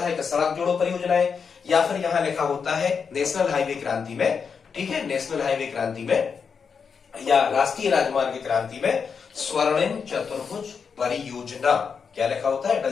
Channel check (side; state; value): right; quieter; 6.0 dB